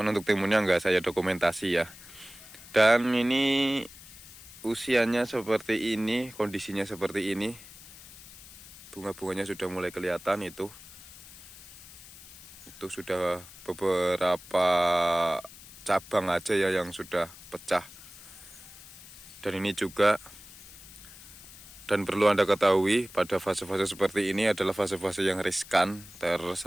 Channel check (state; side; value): noise; left; hiss, 18 dB below the sound